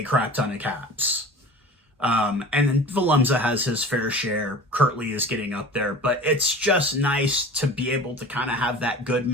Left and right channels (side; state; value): both; normal; correlation 0.39